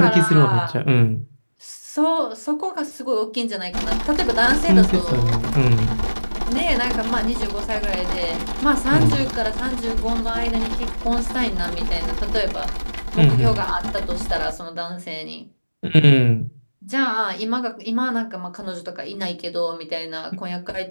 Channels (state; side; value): inverted; both; correlation -1.00